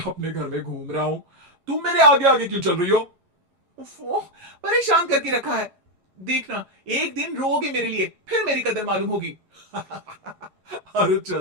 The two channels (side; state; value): left; late; 11 ms